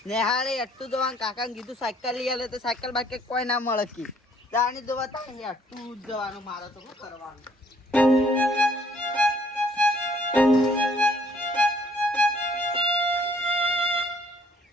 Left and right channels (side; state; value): both; normal; correlation 0.63